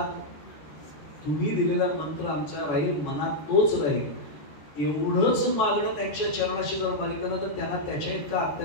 तुम्ही दिलेला मंत्र आमच्या राहील, मनात तोच राहील. एवढंच मागणं त्यांच्या चरणाशी जर मागितलं ना तर त्यांना त्याच्या इतका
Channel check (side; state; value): right; late; 14 ms